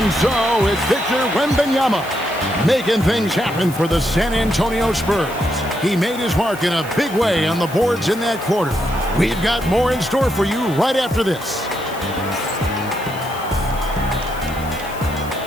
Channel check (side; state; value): left; noise; hiss, 17 dB below the sound